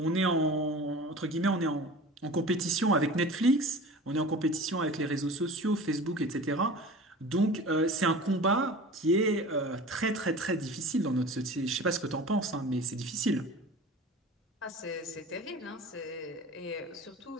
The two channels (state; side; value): normal; both; correlation 0.38